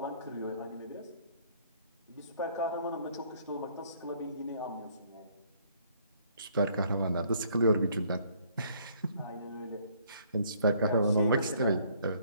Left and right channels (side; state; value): both; inverted; correlation -0.63